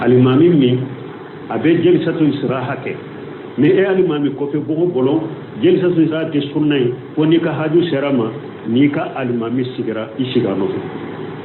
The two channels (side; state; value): both; identical; correlation 1.00